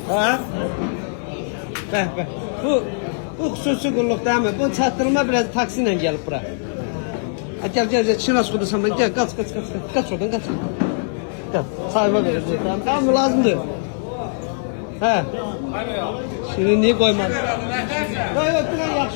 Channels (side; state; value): right; silent; digital silence